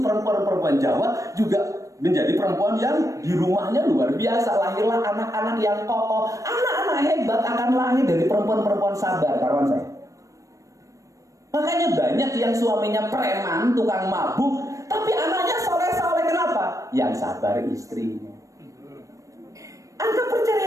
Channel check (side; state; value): left; late; 0.16 ms